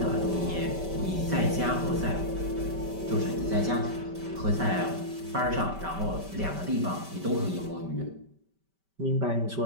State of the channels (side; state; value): left; late; 5.2 ms